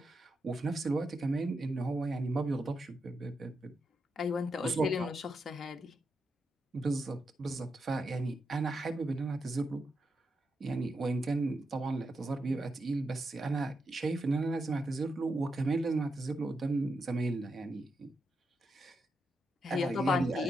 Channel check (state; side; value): normal; both; correlation 0.85